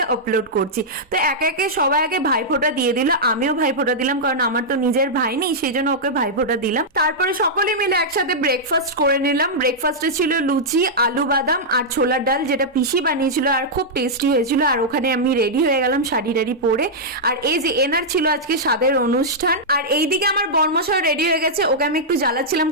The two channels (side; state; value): both; normal; correlation -0.08